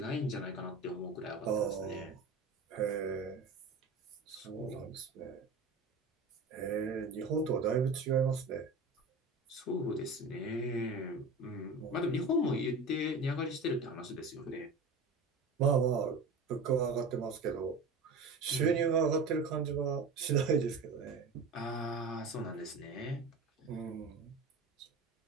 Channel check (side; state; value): left; quieter; 3.5 dB